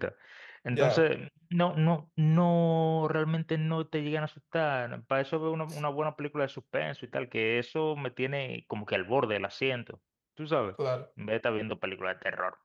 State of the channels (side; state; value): both; identical; correlation 1.00